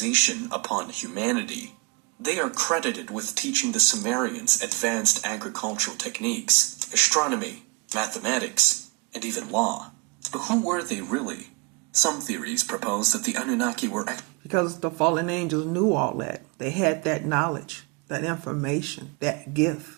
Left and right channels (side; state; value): left; quieter; 29.1 dB